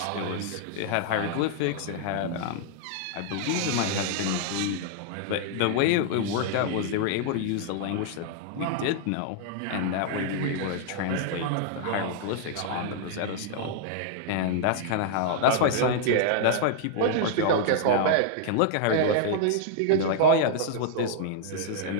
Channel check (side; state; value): both; different; correlation -0.01